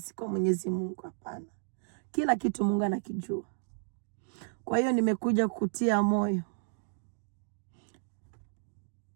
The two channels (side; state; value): left; silent; digital silence